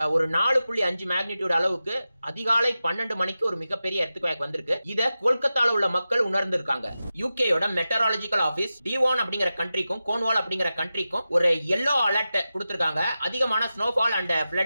ஒரு 4.5 மேக்னிடியூட் அளவுக்கு அதிகாலை 12 மணிக்கு ஒரு மிகப்பெரிய எர்த்குவேக் வந்திருக்கு. இத கொல்கத்தால உள்ள மக்கள் உணர்ந்திருக்காங்க. யூகேயோட மெட்டராலஜிக்கல் ஆபீஸ் டிவான் அப்படிங்கிற கண்ட்ரிக்கும் கோன்வால் அப்படிங்கிற கண்ட்ரிக்கும் ஒரு yellow அலர்ட் கொடுத்திருக்காங்க. அதிகமான ஸ்னோஃபால் அண்ட்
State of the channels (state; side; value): inverted; both; correlation -0.93